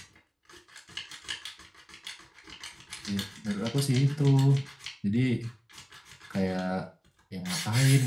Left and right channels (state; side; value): identical; both; correlation 1.00